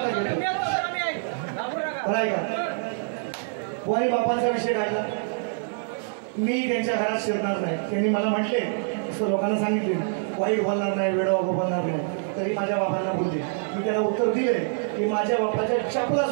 का कोणी बापांचा विषय काढला. मी त्यांच्या घरात शिरणार नाही. त्यांनी मला म्हटले असं लोकांना सांगितले वाईट बोलणार नाही वेडवा बोलणार नाही. तरी माझ्या बाबांना बोलले. मी त्यांना उत्तर दिले की माझ्या बापाच्या चपला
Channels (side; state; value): left; silent; digital silence